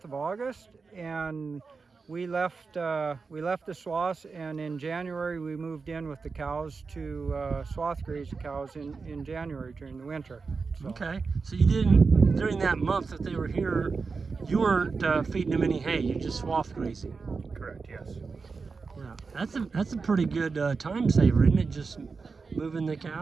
of August, and we left the swaths, and in January we moved in with the cows to swath graze the cows in January during the winter. So. Okay, so you didn't, during that month that they were here, you weren't feeding them any hay, you just swath grazing. Correct, yes. Yeah, that's a pretty good time saver, isn't it? Just moving the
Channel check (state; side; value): quieter; left; 4.7 dB